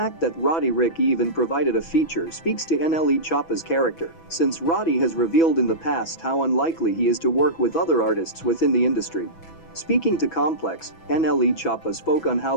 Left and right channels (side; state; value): right; late; 6.1 ms